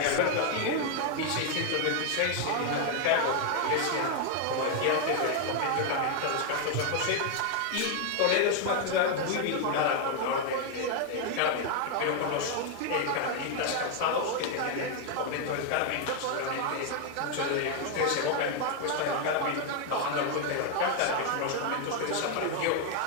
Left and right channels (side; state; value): both; different; correlation 0.00